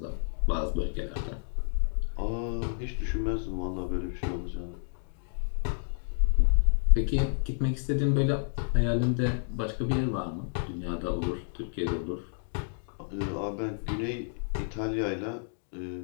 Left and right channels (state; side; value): silent; right; digital silence